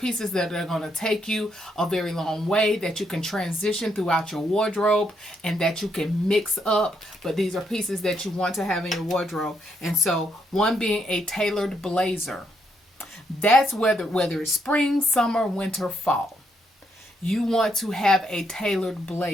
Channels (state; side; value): normal; both; correlation 0.76